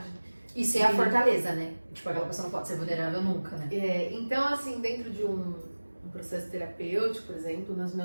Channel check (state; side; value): inverted; both; correlation -1.00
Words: Isso é a fortaleza, né? Tipo, aquela pessoa não pode ser vulnerável nunca, né? Então, assim, dentro de um processo terapêutico, por exemplo, nos